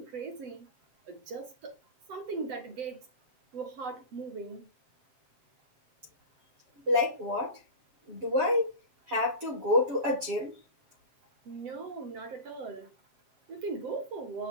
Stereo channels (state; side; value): late; left; 7.2 ms